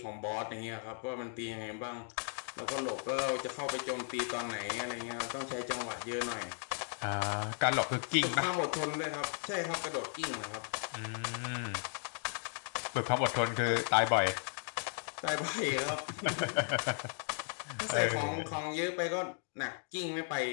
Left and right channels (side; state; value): right; silent; 54 dB below the other